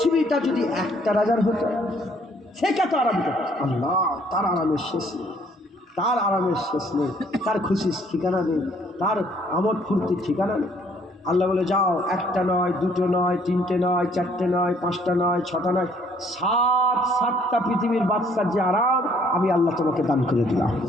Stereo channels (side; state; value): both; normal; correlation 0.63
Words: যদি একটা রাজার হতো, সে কত আরাম করত? আল্লাহ তার আরামের শেষ নেই, তার আরামের শেষ নেই, তার খুশির ঠিকানা নেই, তার আমোদ ফুর্তির ঠিকানা নেই। আল্লাহ বলে, যাও, একটা নয়, দুটো নয়, তিনটে নয়, চারটে নয়, পাঁচটা নয়, ছটা নয়, 7টা পৃথিবীর বাদশার যে আরাম আমি আল্লাহ তোমাকে দান করে দিলাম।